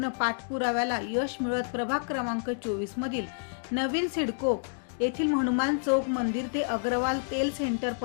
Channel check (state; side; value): silent; right; digital silence